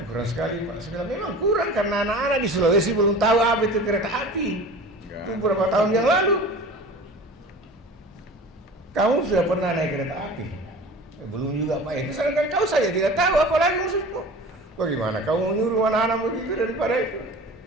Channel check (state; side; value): normal; both; correlation 0.38